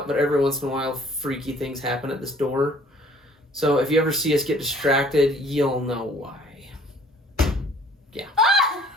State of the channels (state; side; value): normal; both; correlation 0.56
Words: but every once in a while, freaky things happen at this door. So if you ever see us get distracted, you'll know why. Yeah. Ah!